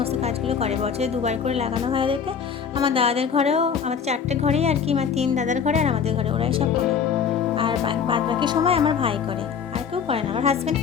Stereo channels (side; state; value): right; quieter; 7.0 dB